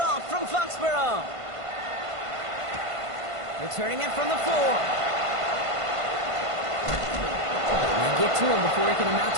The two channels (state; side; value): late; left; 1.5 ms